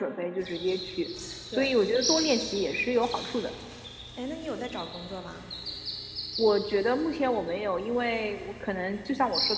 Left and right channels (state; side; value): identical; both; correlation 1.00